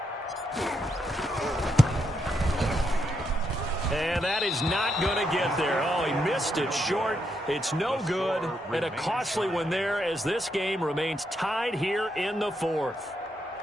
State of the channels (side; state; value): both; normal; correlation 0.80